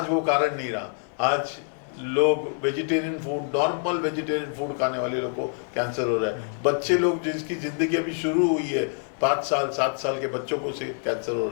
वो कारण नहीं रहा। आज लोग vegetarian food, normal vegetarian food खाने वाले लोग को कैंसर हो रहा है। बच्चे लोग जिसकी जिंदगी अभी शुरू हुई है, 5 साल 7 साल के बच्चों को से कैंसर हो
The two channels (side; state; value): right; silent; 56 dB below the other